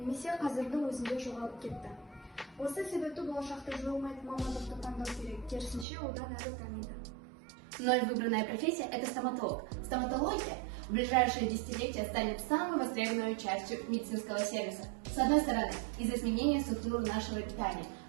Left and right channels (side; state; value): left; drops out; at 5.9 s